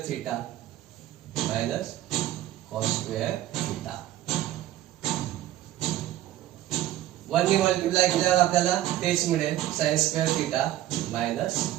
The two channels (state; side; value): quieter; left; 13.9 dB